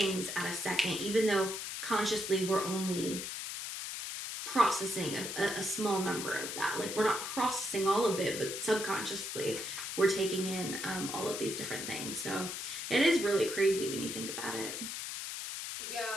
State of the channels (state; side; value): noise; left; hiss, 5 dB below the sound